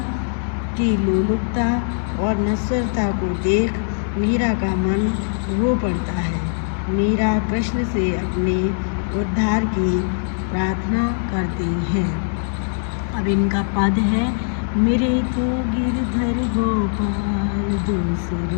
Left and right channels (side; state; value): right; silent; digital silence